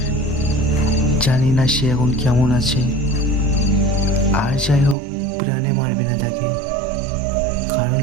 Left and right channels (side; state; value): left; drops out; at 5.0 s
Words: জানি না সে এখন কেমন আছে। আর যাই হোক, প্রাণে মারবে না তাকে, কারণ